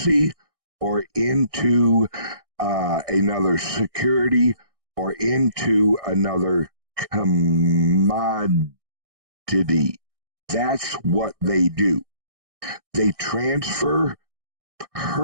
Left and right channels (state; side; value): late; left; 1.6 ms